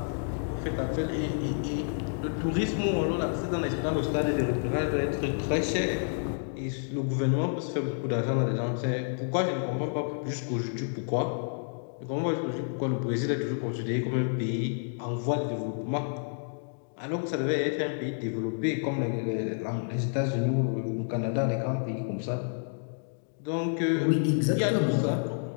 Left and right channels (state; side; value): silent; right; digital silence